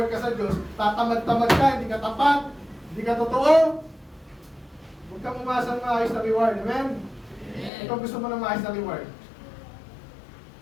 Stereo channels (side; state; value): right; drops out; at 7.7 s